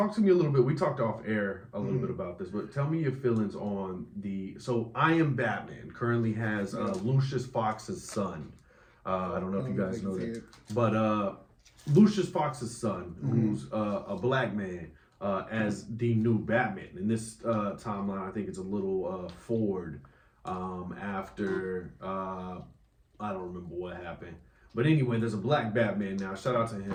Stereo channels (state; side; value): identical; both; correlation 1.00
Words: to me a little bit. We talked off air a little bit about this, but tell me your feelings on So I Am Batman currently has Lucius Fox's son. I don't know if you guys know that. But Lucius Fox's son, who's a black man, as the new Batman. In this timeline, I think it's a little forward after, I don't remember what happened. But anyway, there's a black Batman now. Shout out to